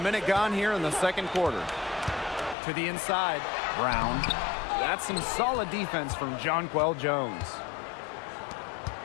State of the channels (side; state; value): right; drops out; at 2.6 s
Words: minute gone here in the second quarter. To the inside, Brown. That's some solid defense from Jonquel Jones.